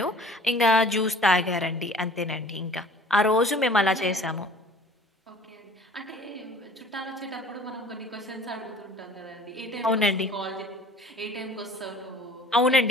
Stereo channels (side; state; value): both; normal; correlation 0.49